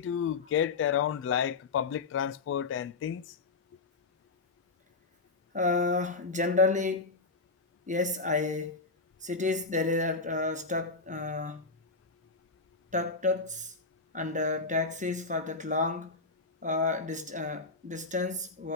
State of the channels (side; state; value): right; quieter; 4.0 dB